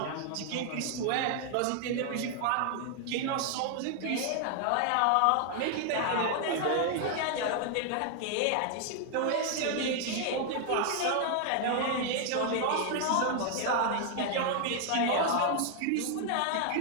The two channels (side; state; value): both; different; correlation 0.00